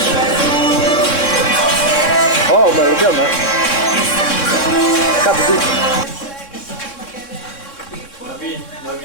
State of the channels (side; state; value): right; late; 3.6 ms